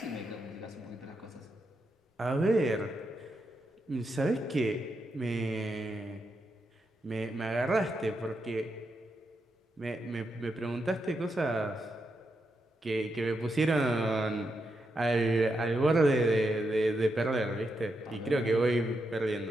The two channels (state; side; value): normal; both; correlation 0.84